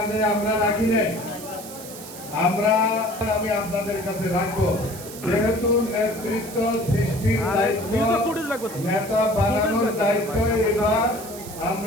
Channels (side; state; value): right; noise; hiss, 14 dB below the sound